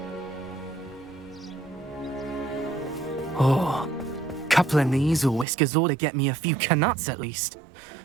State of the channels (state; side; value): drops out; left; at 5.5 s